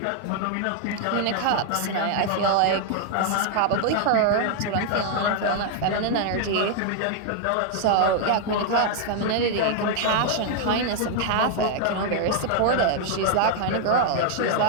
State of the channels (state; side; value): different; both; correlation 0.00